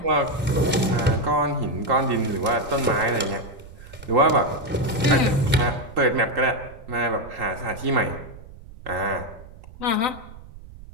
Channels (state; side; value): noise; right; rumble, 18 dB below the sound